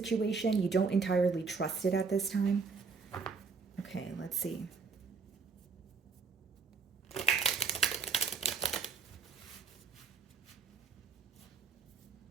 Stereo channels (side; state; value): left; quieter; 4.9 dB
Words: You don't entirely trust it at this time. Okay, let's see.